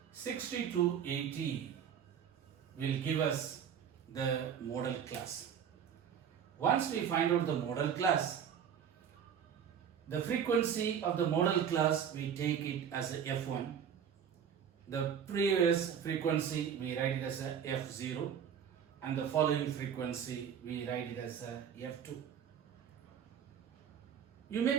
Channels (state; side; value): quieter; left; 8.1 dB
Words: 60 to 80 will give us the model class. Once we find out the model class, the frequency of the model class, we take it as a F1. The previous frequency, we write it as a F0, and the following frequency, we write it as a F2. You